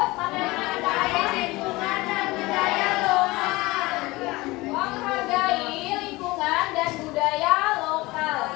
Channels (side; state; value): right; quieter; 21.2 dB